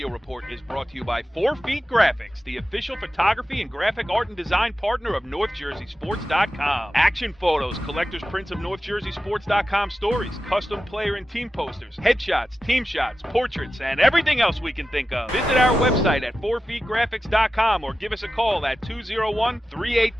report is brought to you by 4 Feet Graphics, the official photography and graphic art and design partner of NorthJerseySports.com. Action photos, collector's prints of NorthJerseySports.com stories, custom player and team posters, headshots, team shots, portraits, and everything else we can think of. Visit our website at 4feetgraphics.com or give us a call at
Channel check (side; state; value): both; normal; correlation 0.92